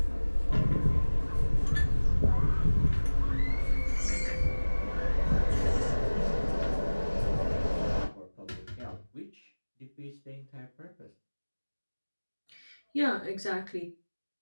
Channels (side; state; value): both; inverted; correlation -1.00